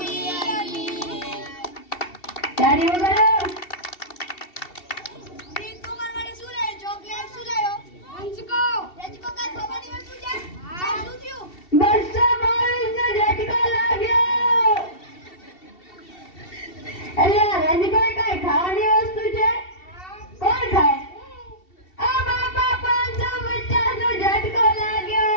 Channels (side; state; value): right; late; 2.7 ms